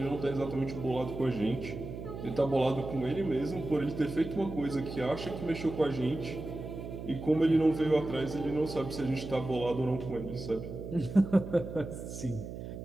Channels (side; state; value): right; noise; hum, 9 dB below the sound